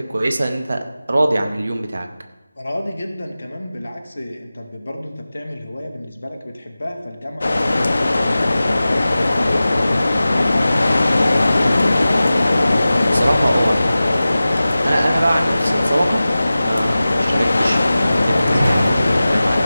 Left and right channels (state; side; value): inverted; both; correlation -0.96